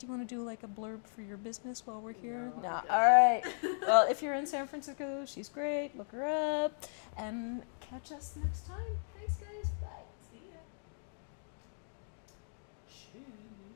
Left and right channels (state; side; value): silent; right; digital silence